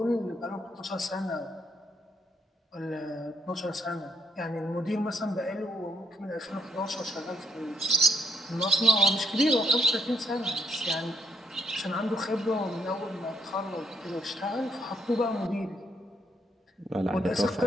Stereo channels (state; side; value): normal; both; correlation 0.71